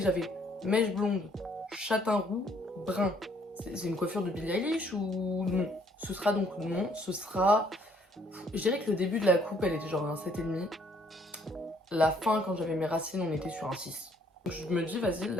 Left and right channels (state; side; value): normal; both; correlation 0.65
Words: j'avais mèches blondes, châtain roux, brun. C'est une coiffure de Billie Eilish ou non? Ce sera donc non, ce sera... Je dirais que le début de la coupe elle était genre un 7,5. La fin quand j'avais mes racines on était sur un 6. Donc je me dis vas-y